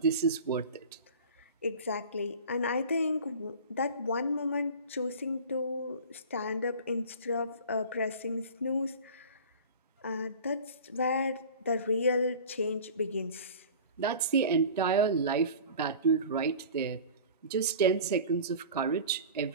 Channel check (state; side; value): inverted; both; correlation -0.39